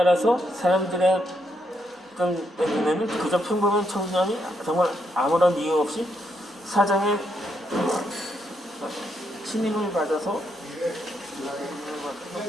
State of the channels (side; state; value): both; normal; correlation 0.77